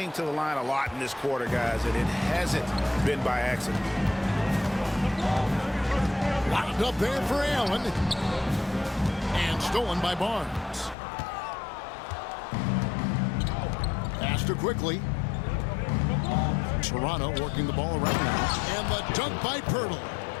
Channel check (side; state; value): right; drops out; at 11.0 s